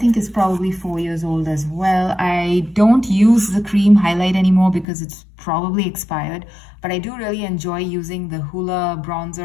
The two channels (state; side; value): drops out; right; at 4.9 s